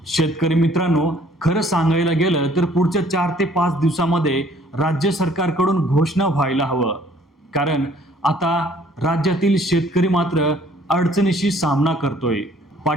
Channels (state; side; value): normal; both; correlation 0.59